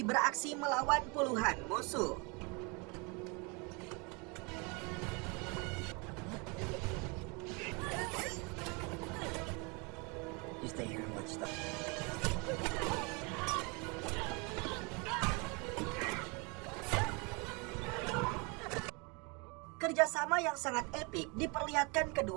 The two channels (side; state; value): left; quieter; 30.3 dB